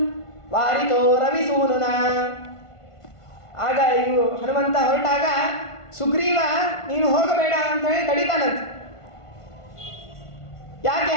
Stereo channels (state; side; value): late; right; 1.5 ms